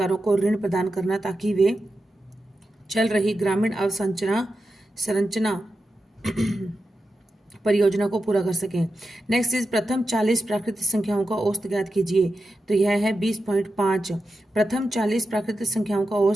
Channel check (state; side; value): normal; both; correlation 0.90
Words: को ऋण प्रदान करना ताकि वे चल रही ग्रामीण अवसंरचना परियोजना को पूरा कर सकें। नेक्स्ट इज प्रथम 40 प्राकृतिक संख्याओं का औसत ज्ञात कीजिए। तो यह है 20.5। प्रथम 40 प्राकृतिक संख्याओं का